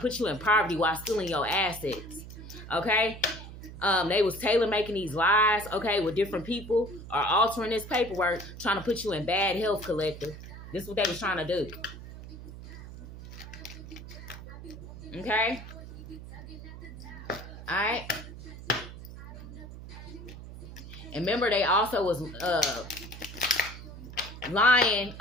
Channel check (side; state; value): right; noise; hum, 13 dB below the sound